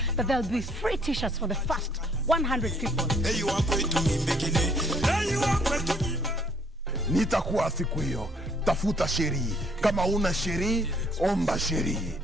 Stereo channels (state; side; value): normal; both; correlation 0.63